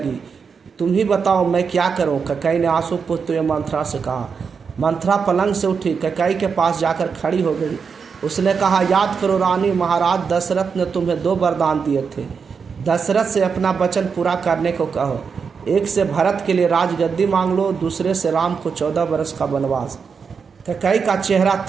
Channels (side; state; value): left; quieter; 5.9 dB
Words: तुम ही बताओ मैं क्या करूं? कैकेयी ने आंसू पोंछते हुए मंथरा से कहा। मंथरा पलंग से उठी, कैकेयी के पास जाकर खड़ी हो गई। उसने कहा, याद करो रानी, महाराज दशरथ ने तुम्हें 2 वरदान दिए थे। दशरथ से अपना वचन पूरा करने को कहो। एक से भरत के लिए राजगद्दी मांग लो, दूसरे से राम को 14 वर्ष का वनवास। कैकेयी का चेहरा